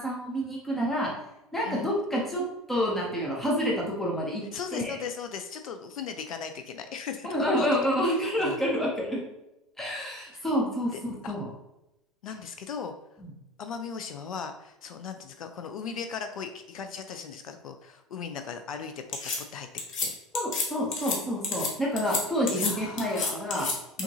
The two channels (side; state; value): both; normal; correlation 0.40